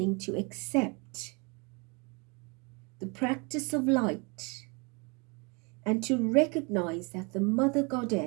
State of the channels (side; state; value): left; quieter; 30.7 dB